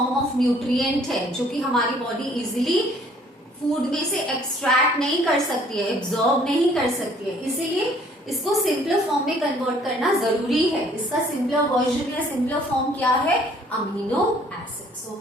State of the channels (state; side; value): normal; both; correlation 0.59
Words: ऑफ न्यूट्रिएंट है जो कि हमारी बॉडी इजीली फूड में से एक्सट्रैक्ट नहीं कर सकती है, एब्जॉर्ब नहीं कर सकती है, इसीलिए इसको सिंपलर फॉर्म में कन्वर्ट करना जरूरी है। इसका सिंपलर वर्जन या सिंपलर फॉर्म क्या है, amino acid.